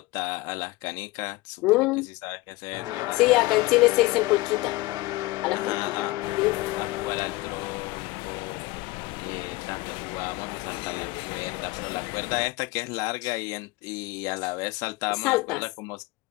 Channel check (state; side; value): quieter; right; 20.9 dB